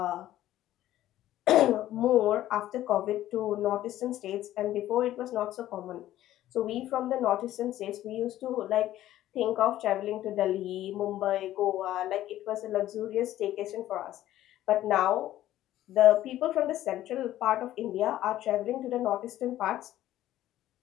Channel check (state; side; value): quieter; right; 13.7 dB